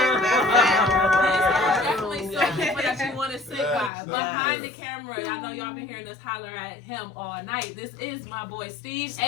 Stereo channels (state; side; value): drops out; right; at 3.9 s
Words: Definitely some people that you want to sit by. Behind the camera, I know y'all been hearing us holler at him all night. This is my boy Steve,